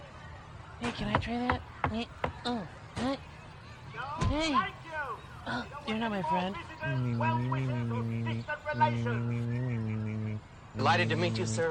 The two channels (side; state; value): both; identical; correlation 1.00